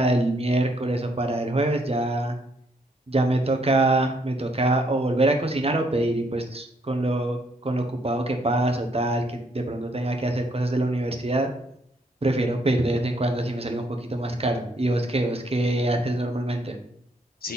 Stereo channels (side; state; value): both; normal; correlation 0.70